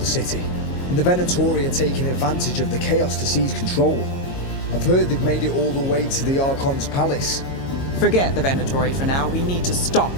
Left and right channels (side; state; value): right; late; 22 ms